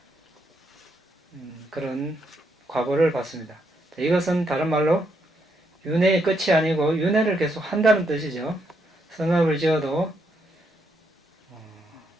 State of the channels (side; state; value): both; normal; correlation 0.77